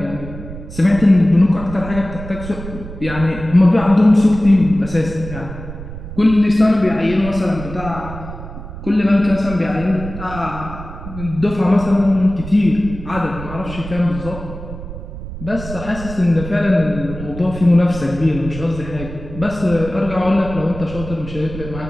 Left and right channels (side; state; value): right; noise; rumble, 11 dB below the sound